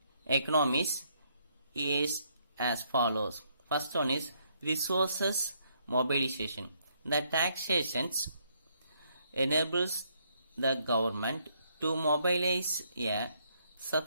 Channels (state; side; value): inverted; both; correlation -0.72